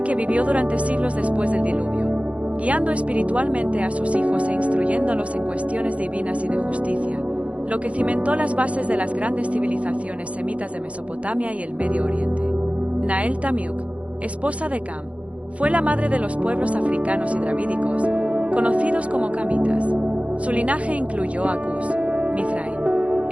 que vivió durante siglos después del diluvio, guiando espiritualmente a sus hijos e instruyéndolos en cuestiones divinas y de justicia, lo que cimentó las bases de las grandes civilizaciones semitas de Mesopotamia y el Medio Oriente. Nael Tamiuk, esposa de Cam, fue la madre de los pueblos africanos y dravídicos, conocidos como camitas. Su linaje incluyó a Cus, Mizraim,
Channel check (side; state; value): left; late; 0.064 ms